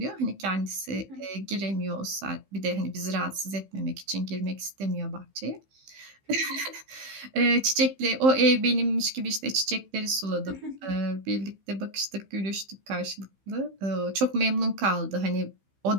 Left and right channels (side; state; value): left; late; 15 ms